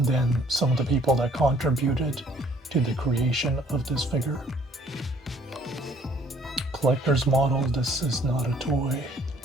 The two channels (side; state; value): both; normal; correlation 0.59